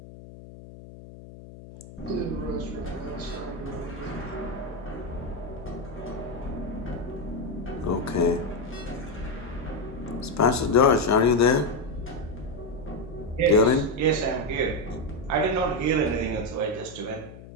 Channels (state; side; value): noise; left; hum, 16 dB below the sound